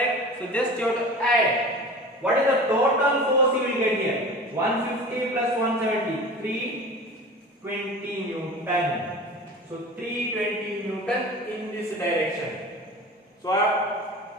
So just you have to add. What is the total force you will get here? 150 plus 170. 320 Newton. So 320 Newton in this direction. So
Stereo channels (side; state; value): both; normal; correlation 0.37